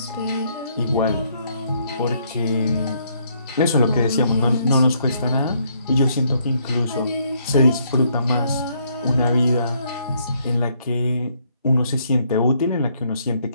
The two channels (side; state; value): both; inverted; correlation -0.70